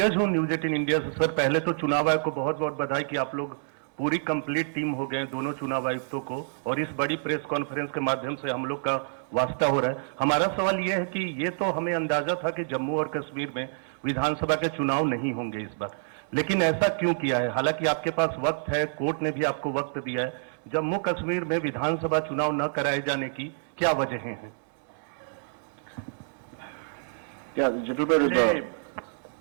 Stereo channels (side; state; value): left; silent; 60 dB below the other